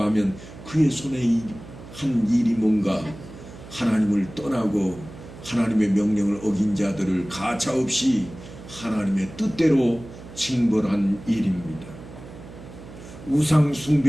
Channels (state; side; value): noise; right; hum, 16 dB below the sound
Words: 하면 그의 손에 한 일이 뭔가 하나님을 떠나고 하나님의 명령을 어긴 자들을 가차없이 하나님의 뜻대로 징벌한 일입니다. 우상